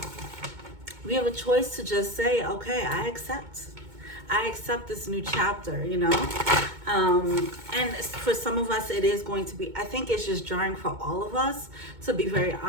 we have a choice to just say, okay, I accept this new chapter, and for some of us it is going to be, I think it's just jarring for all of us, to be very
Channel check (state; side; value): late; left; 2.2 ms